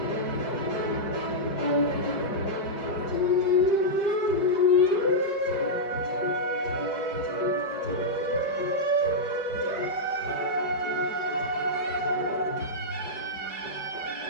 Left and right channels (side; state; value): right; late; 4.9 ms